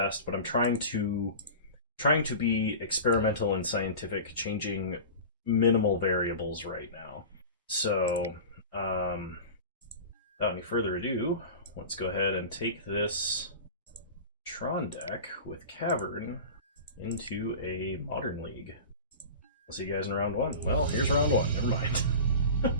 but I'm trying to be experimental and scientific, changing minimal variables right now. So, without any further ado, let's go ahead and take this Tron deck with Cavern into a Modern League. I'll see you guys in round one. Well, here's round one. Never mind.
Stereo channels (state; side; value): inverted; both; correlation -0.33